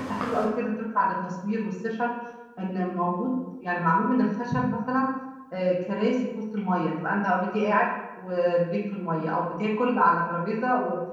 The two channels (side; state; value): both; identical; correlation 1.00